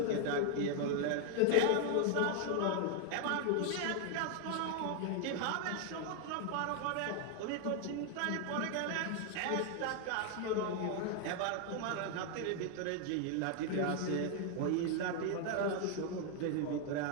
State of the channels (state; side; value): different; both; correlation 0.00